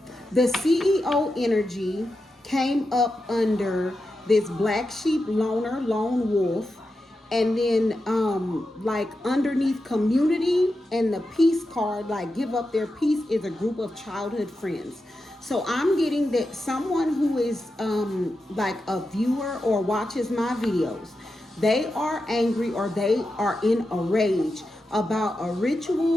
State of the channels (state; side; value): normal; both; correlation 0.89